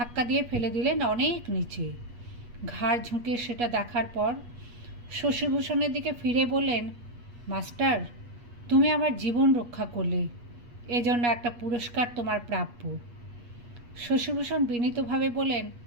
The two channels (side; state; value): left; late; 8.3 ms